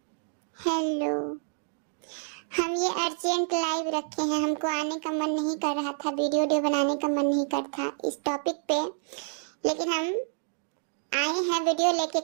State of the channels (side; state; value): left; silent; digital silence